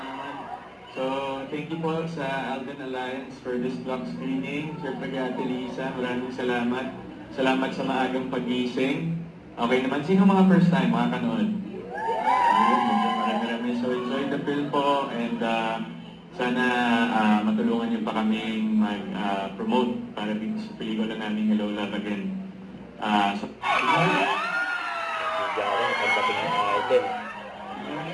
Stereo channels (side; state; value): both; identical; correlation 1.00